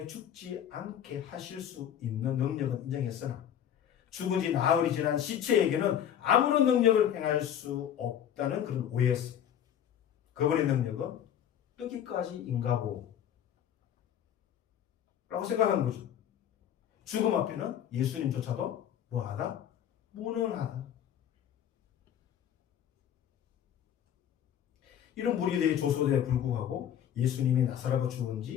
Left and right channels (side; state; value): right; quieter; 9.8 dB